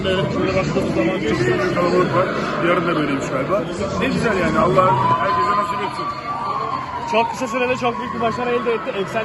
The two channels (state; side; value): identical; both; correlation 1.00